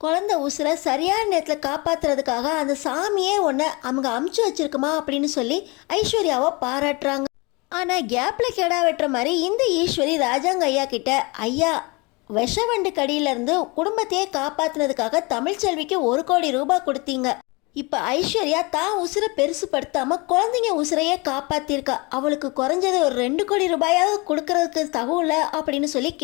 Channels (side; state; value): right; quieter; 27.0 dB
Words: குழந்தை உசுரை சரியான நேரத்தில் காப்பாற்றுறதுக்காக அந்த சாமியே ஒன்று அவங்க அமுச்சு வச்சிருக்குமா அப்படின்னு சொல்லி ஐஸ்வர்யாவை பாராட்டுறாங்க. ஆனால் கேப்பில் கெடா வெட்டுற மாதிரி இந்த ஈஸ்வரி ராஜாங்க ஐயா கிட்ட, ஐயா விஷவண்டு கடியிலேருந்து குடும்பத்தையே காப்பாற்றினதுக்காக தமிழ்ச்செல்விக்கு 1,00,00,000 கொடுத்தீங்க. இப்போ ஐஸ்வர்யா தான் உசுரை பெருசுப்படுத்தாமல் குழந்தைங்க உசுரையே காப்பாற்றிருக்கா, அவளுக்கு குறைஞ்சது ஒரு 2,00,00,000 கொடுக்கறதுக்கு தகுல அப்படின்னு சொல்லி